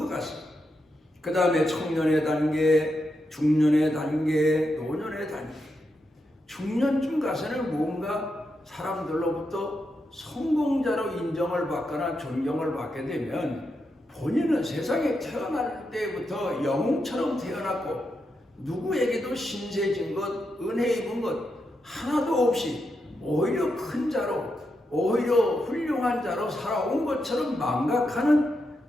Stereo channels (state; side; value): normal; both; correlation 0.85